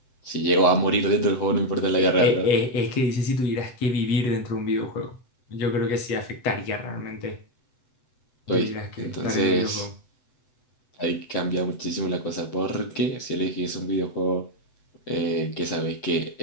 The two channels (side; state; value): right; late; 7.9 ms